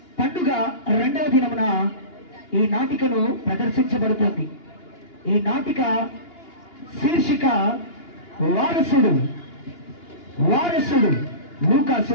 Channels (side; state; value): right; late; 2.9 ms